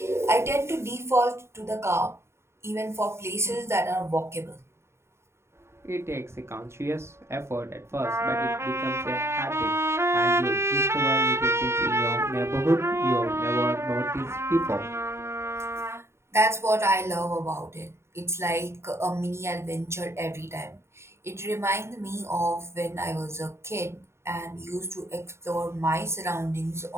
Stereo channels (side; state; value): left; late; 0.13 ms